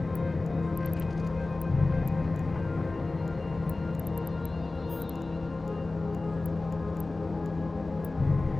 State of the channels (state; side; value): quieter; right; 3.2 dB